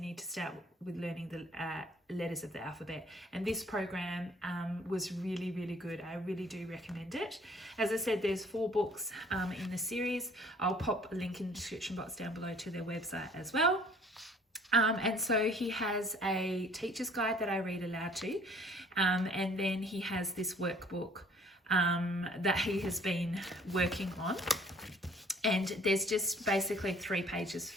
to start with learning the letters of the alphabet, and this program was really, really good. I really do recommend it. As I said, there's 4 books in the series. I'll pop a link in the description box down below to their website as well. And so he has a teacher's guide that I read aloud to, and then he has this workbook that he has been working on. And there's just basically 3 pages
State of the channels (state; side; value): normal; both; correlation 0.56